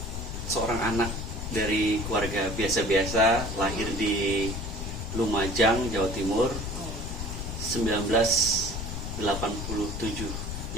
seorang anak dari keluarga biasa-biasa, lahir di Lumajang, Jawa Timur, 1987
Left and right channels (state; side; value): noise; left; rumble, 5 dB below the sound